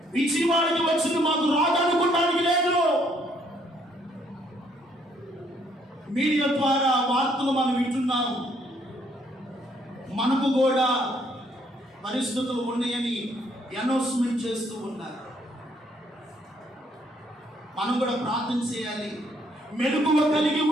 విజయవాడకి వచ్చింది మాకు రాదనుకోవడానికి లేదు. మీడియా ద్వారా వార్తలు మనం వింటున్నాం. మనకు కూడా పరిస్థితులు ఉన్నాయని అనౌన్స్మెంట్ చేస్తూ ఉన్నారు. మనం కూడా ప్రార్థన చేయాలి, మెలకువ కలిగి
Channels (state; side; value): normal; both; correlation 0.67